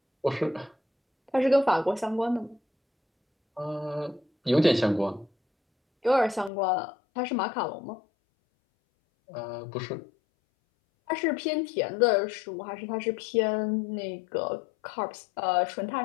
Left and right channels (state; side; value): drops out; right; at 6.5 s